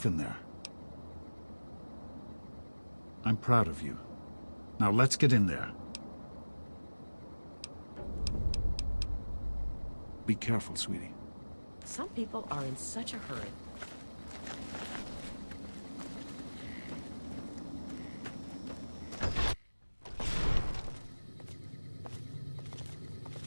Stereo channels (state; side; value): inverted; both; correlation -1.00